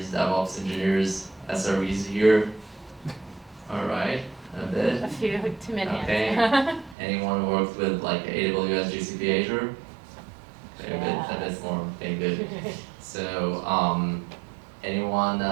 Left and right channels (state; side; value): drops out; left; at 7.0 s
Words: DevOps engineers, SREs here? All right, a bit. A few, too many. Okay. Anyone worked with like AWS, GCP, Azure? Okay, Yeah. a bit more. Okay, good. So, anyone